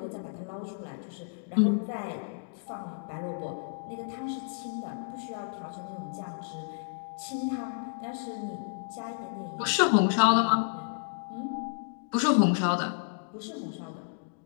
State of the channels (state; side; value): silent; right; digital silence